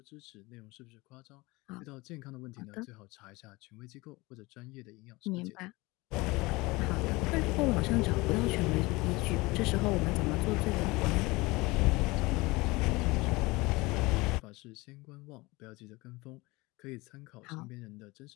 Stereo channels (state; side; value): quieter; right; 22.8 dB